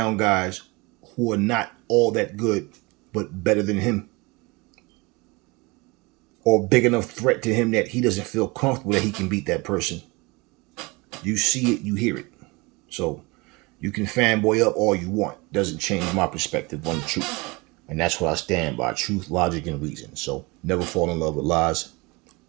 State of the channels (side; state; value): left; quieter; 25.5 dB